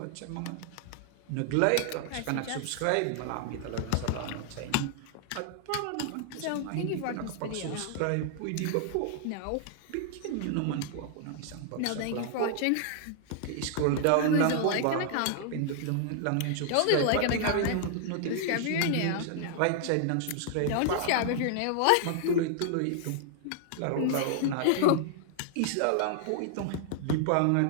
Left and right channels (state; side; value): different; both; correlation 0.00